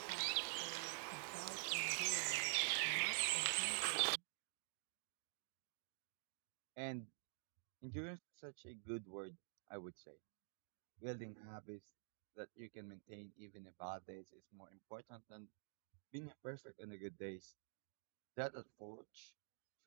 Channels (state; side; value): silent; left; digital silence